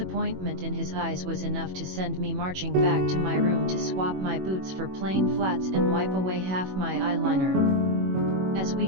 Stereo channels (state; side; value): late; left; 21 ms